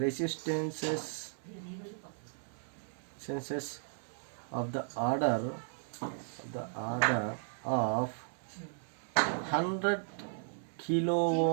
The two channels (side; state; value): left; silent; 54 dB below the other